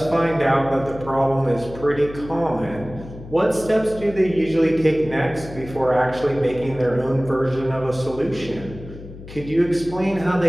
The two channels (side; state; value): left; noise; hum, 15 dB below the sound